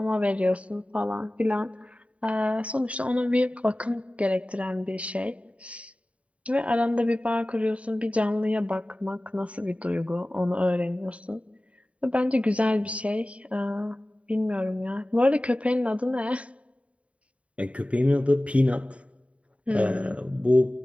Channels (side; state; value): left; late; 0.065 ms